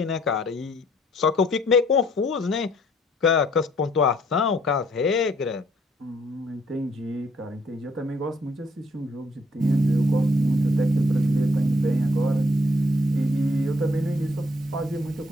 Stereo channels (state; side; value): normal; both; correlation 0.65